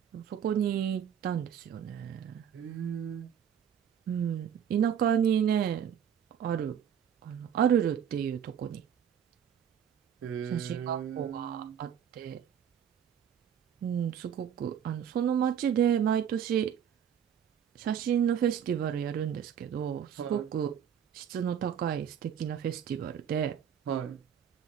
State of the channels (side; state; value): left; quieter; 8.7 dB